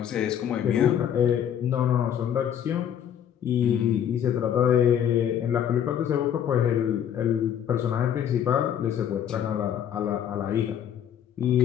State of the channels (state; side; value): quieter; right; 9.4 dB